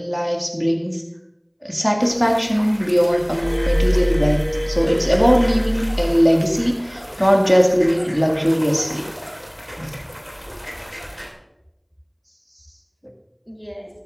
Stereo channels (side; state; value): both; identical; correlation 1.00